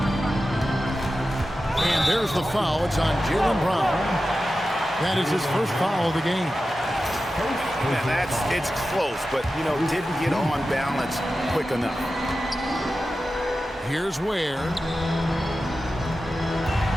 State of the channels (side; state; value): both; normal; correlation 0.93